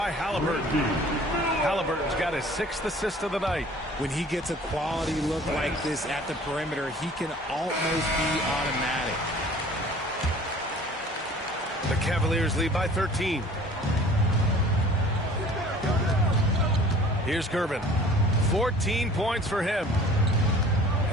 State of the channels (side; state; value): both; normal; correlation 0.49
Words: Halliburton. Halliburton's got his 6th assist of the night. When he gets a quality look like this at the perimeter, he can almost be automatic. The Cavaliers lead by 13. Here's Gervin. 14 points for him.